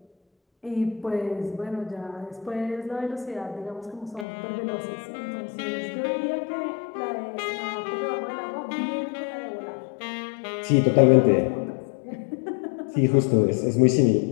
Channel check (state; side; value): drops out; right; at 4.2 s